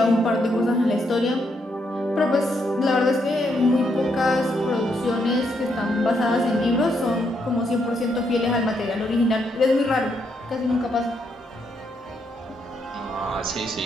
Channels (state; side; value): normal; both; correlation 0.77